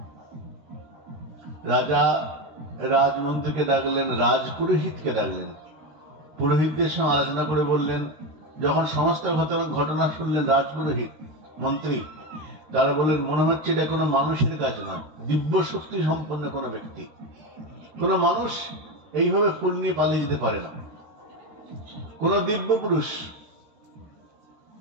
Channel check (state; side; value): late; left; 13 ms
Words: রাজা রাজমন্ত্রীকে ডাকলেন, রাজপুরোহিতকে ডাকলেন, পুরোহিতদের সঙ্গে আলোচনা করে বললেন, যখন সমস্ত ঘটনা শুনলেন রাজপুরোহিত মন্ত্রী, তারা বলেন মনে হচ্ছে এটা কোনো মানুষের কাজ নয়, দিব্য শক্তি সম্পন্ন কোনো ব্যক্তি, কোনো মানুষ এইভাবে ফুল নিয়ে পালিয়ে যেতে পারে না, কোন দিব্য পুরুষ।